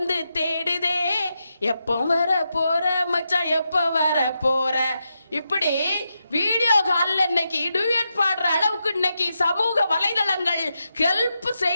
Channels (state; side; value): inverted; both; correlation -0.86